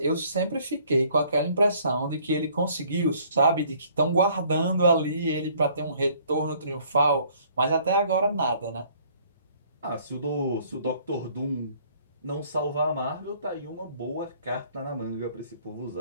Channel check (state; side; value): inverted; both; correlation -0.59